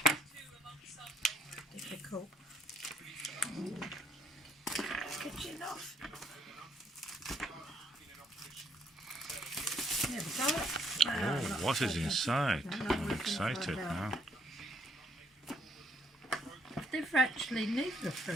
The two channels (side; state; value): both; normal; correlation 0.69